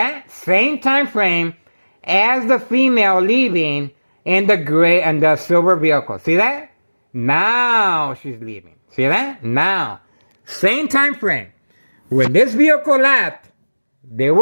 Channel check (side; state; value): both; inverted; correlation -1.00